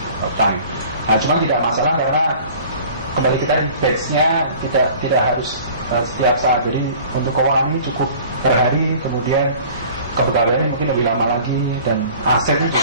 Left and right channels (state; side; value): inverted; both; correlation -0.46